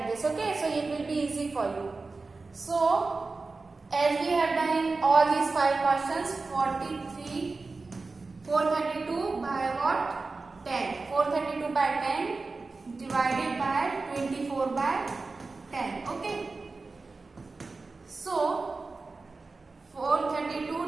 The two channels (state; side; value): quieter; left; 3.8 dB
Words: this. Okay, so it will be easy for you. So as we have done in all these 5 questions, 432 by what? 10. 432 by 10 divided by 24 by 10. Okay. So